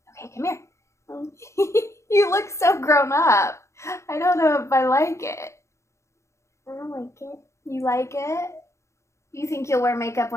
Okay, come here. You look so grown up. I don't know if I like it. I don't like it. You like it? You think you'll wear makeup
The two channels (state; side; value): late; right; 0.14 ms